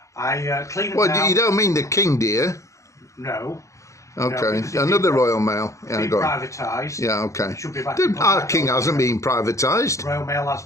I clean them down. You don't mean the King, do you? No. Okay, no, another Royal Mail. It's been privatised. Yeah, okay. It should be back. Our King hasn't been privatised. Royal Mail has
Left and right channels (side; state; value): right; late; 0.15 ms